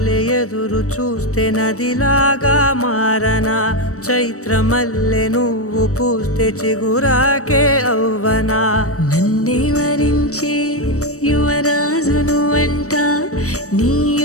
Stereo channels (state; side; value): late; right; 0.65 ms